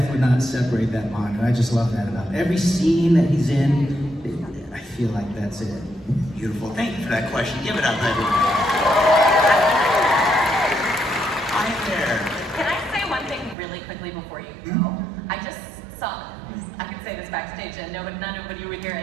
would not separate that bond. And I just love that about it. Every scene that he's in, I feel like that's it. Beautiful. Thank you for that question. Give it up, everyone. Hi there. Can I say one thing really quickly before you go? I just saw, I could say this backstage and nobody would hear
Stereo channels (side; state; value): left; drops out; at 13.6 s